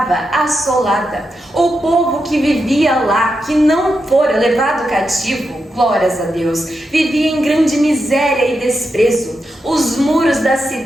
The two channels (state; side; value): normal; both; correlation 0.86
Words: assolada. O povo que vivia lá, que não fora levado cativo, glórias a Deus, vivia em grande miséria e desprezo. Os muros da